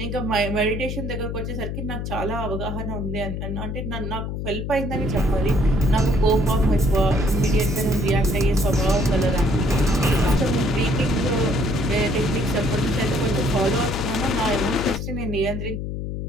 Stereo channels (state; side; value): noise; left; hum, 4 dB below the sound